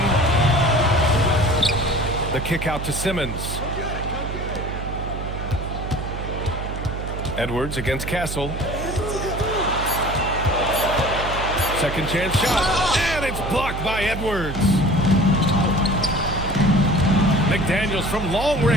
The kick out to Simmons. Edwards against Castle. Second chance shot. And it's blocked by Edwards. McDaniels from long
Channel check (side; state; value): right; noise; hum, 6 dB below the sound